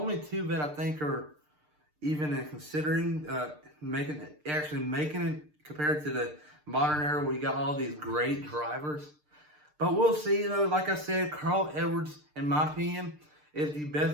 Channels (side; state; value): left; late; 6.7 ms